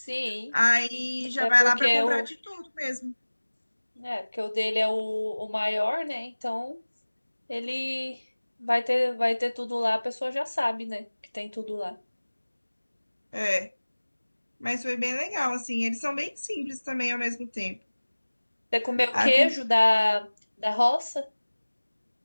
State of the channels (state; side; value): inverted; both; correlation -1.00